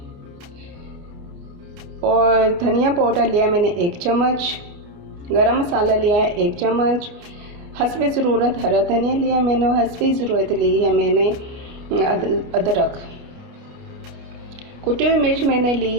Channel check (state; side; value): late; left; 29 ms